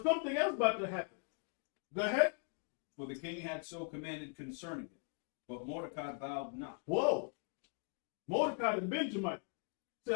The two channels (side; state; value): right; quieter; 37.5 dB